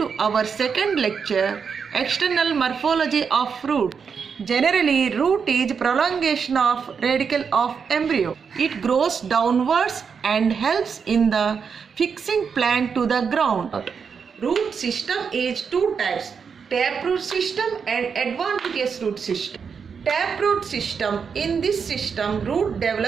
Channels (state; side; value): quieter; left; 6.2 dB